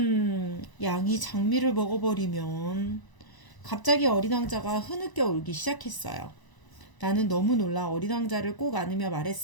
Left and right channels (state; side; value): late; right; 1.0 ms